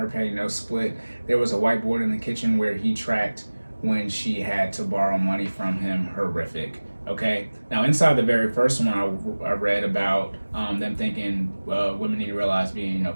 pay, no split. There was a whiteboard in the kitchen where he tracked when she had to borrow money from him. Horrific. Okay. Now, inside the very first one, I read about them thinking women need to realize being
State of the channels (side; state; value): both; inverted; correlation -1.00